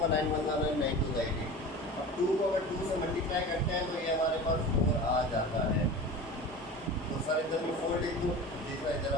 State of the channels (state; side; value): normal; both; correlation 0.34